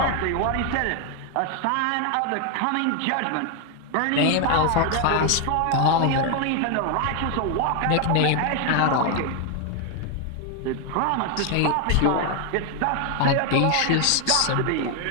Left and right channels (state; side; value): different; both; correlation 0.01